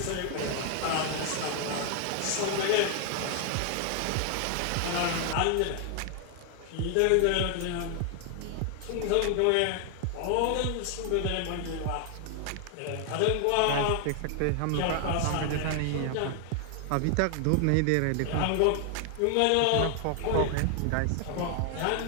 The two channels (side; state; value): both; different; correlation 0.00